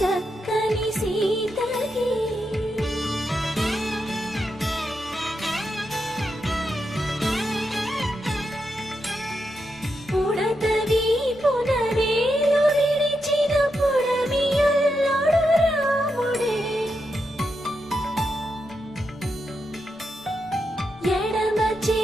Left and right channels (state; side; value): normal; both; correlation 0.85